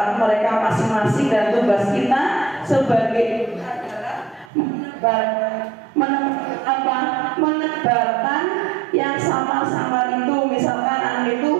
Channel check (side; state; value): left; drops out; at 4.5 s